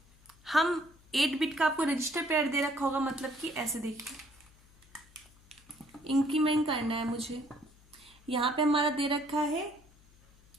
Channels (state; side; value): noise; left; hum, 28 dB below the sound